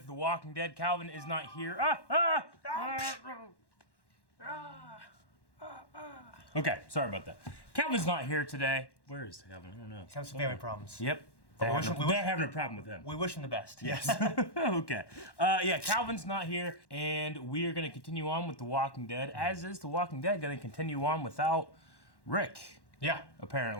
The Walking Dead. Calvin is not here. Okay, sorry about that. Calvin's not here today. Where is Calvin? I don't know. He's having some family problems. Yep. They're having a problem with him. We wish him the best. Yes. Okay. Yeah, Calvin's not here, and we are going to continue on with The Walking Dead, as is The Walking Dead going to continue on without Rick. Yeah.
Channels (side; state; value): right; late; 1.1 ms